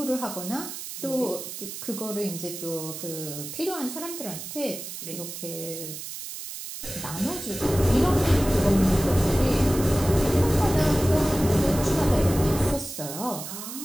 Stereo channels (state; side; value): noise; right; hiss, 9 dB below the sound